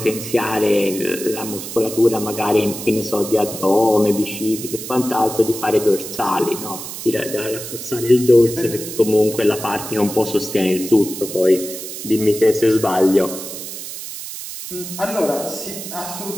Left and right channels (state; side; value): noise; right; hiss, 9 dB below the sound